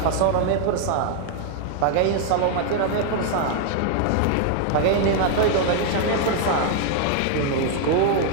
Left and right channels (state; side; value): different; both; correlation 0.00